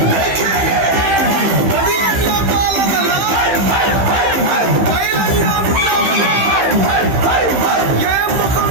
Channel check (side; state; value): left; late; 15 ms